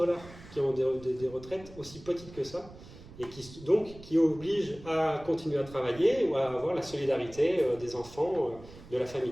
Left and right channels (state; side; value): noise; right; rumble, 18 dB below the sound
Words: qui ont des retraites aussi petites que ça, et qui obligent à continuer à travailler ou à avoir la solidarité des enfants, de la